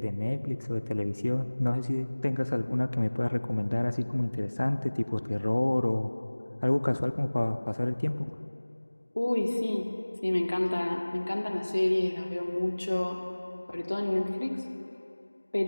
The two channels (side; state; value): both; inverted; correlation -1.00